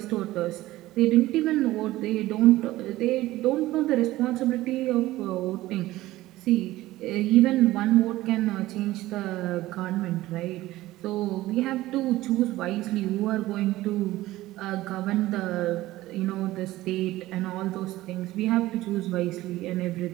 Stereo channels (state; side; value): quieter; left; 16.8 dB